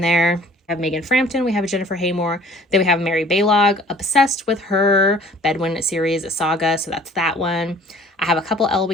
there. We have Megan Frampton. We have Jennifer Haymore. Then we have Mary Baylog. Obsessed with her Bedouin series saga. So that's that one. I have a couple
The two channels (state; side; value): normal; both; correlation 0.52